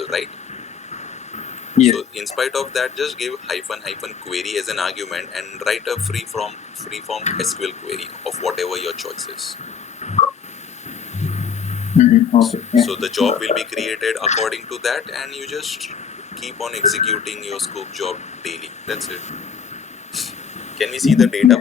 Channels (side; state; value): right; quieter; 7.0 dB